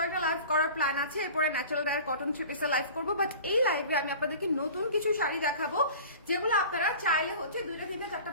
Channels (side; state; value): both; inverted; correlation -0.40